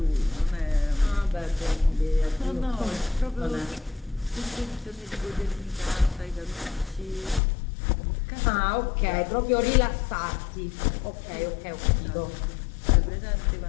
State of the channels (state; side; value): drops out; right; at 7.4 s